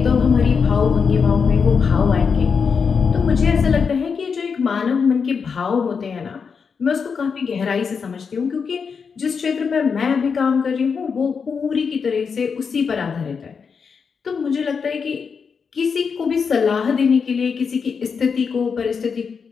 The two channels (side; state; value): right; quieter; 5.9 dB